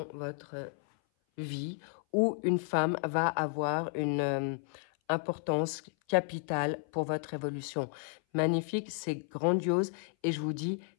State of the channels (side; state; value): right; silent; 56 dB below the other